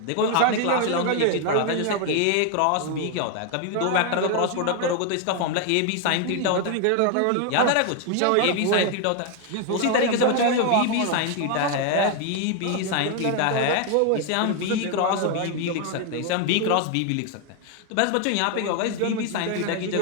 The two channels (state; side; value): different; both; correlation 0.01